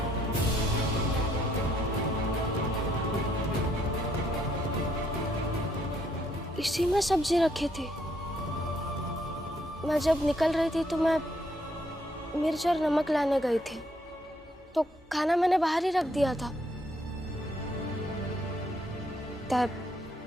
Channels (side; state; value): both; normal; correlation 0.71